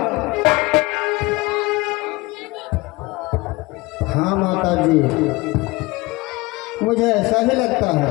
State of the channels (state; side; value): quieter; right; 22.3 dB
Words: हाँ माता जी, मुझे ऐसा ही लगता